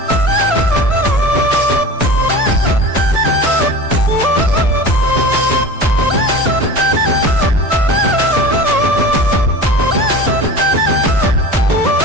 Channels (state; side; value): normal; both; correlation 0.35